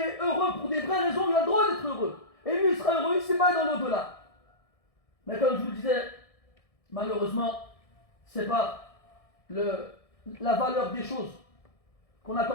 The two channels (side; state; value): right; late; 1.6 ms